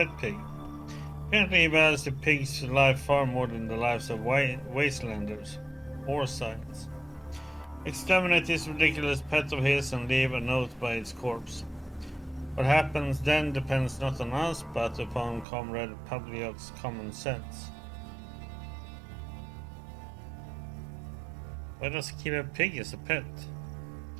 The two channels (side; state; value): left; drops out; at 15.5 s